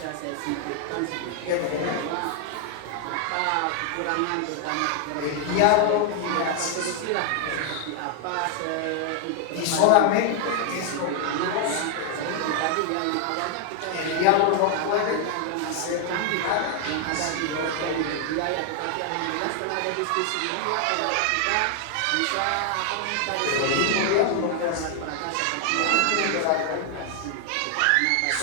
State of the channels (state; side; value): different; both; correlation 0.00